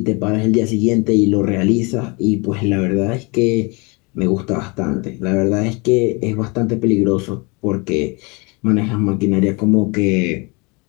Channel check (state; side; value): quieter; right; 28.8 dB